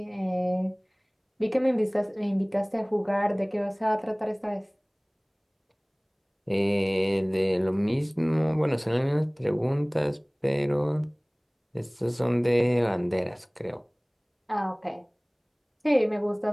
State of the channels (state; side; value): identical; both; correlation 1.00